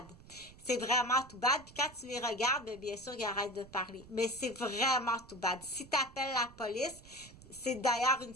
C'est vraiment tout bad. Puis quand tu les regardes, bien sûr, ils arrêtent de parler. Mais c'est vraiment tout bad. Si tu appelles la police, c'est d'ailleurs une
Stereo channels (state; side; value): noise; right; rumble, 20 dB below the sound